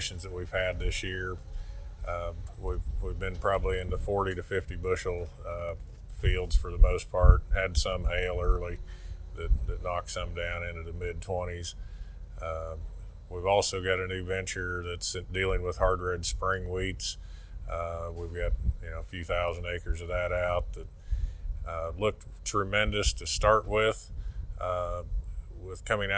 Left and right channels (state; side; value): identical; both; correlation 1.00